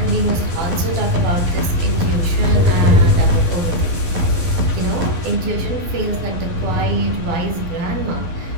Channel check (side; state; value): left; late; 12 ms